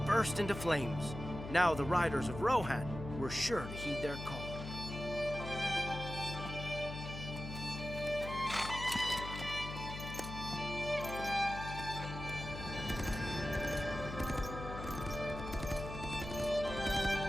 burst into flames. Now the riders of Rohan were sure to heed their call.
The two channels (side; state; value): left; noise; hum, 8 dB below the sound